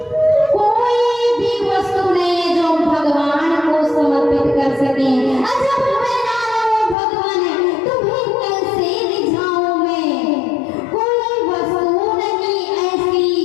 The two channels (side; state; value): right; drops out; at 7.0 s